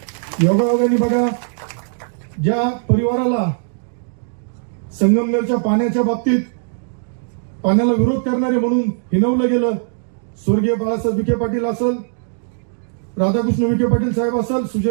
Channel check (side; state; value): left; silent; digital silence